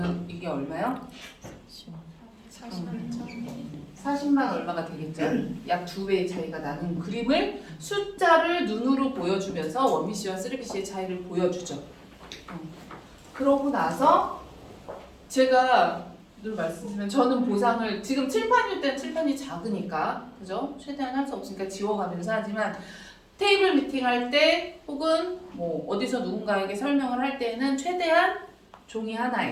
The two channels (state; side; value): identical; both; correlation 1.00